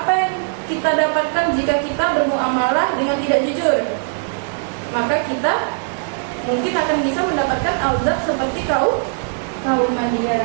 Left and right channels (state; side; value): silent; left; digital silence